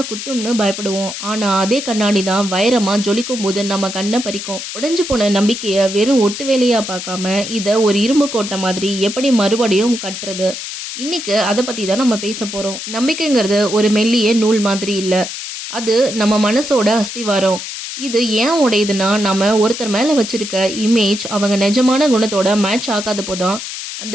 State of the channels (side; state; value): left; noise; hiss, 8 dB below the sound